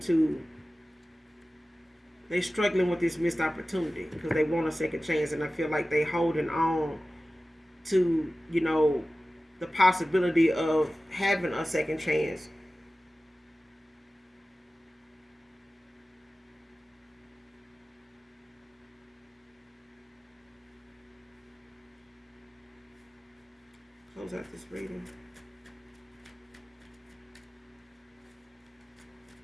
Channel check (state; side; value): normal; both; correlation 0.96